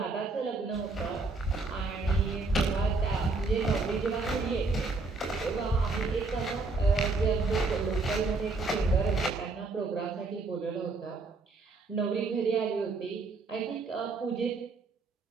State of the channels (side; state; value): left; quieter; 3.7 dB